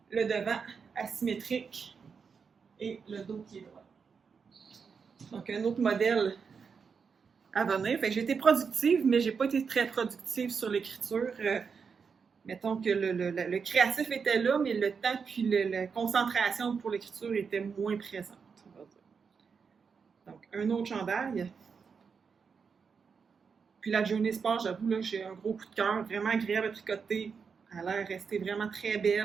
Le devant asymétrique et le dos qui est droit. Donc, un autre modèle à venir. Fait que j'ai été productive, mais j'ai pas été très productive sur l'écriture. Mettons que le créatif était là, mais le temps puis la concentration pour l'écriture était moins présente. Donc, un autre chandail. Puis la Journey Sport, j'avoue, là, j'ai un gros coup de cœur, vraiment agréable à tricoter. Elle a l'air restée vraiment très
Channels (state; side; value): quieter; left; 5.8 dB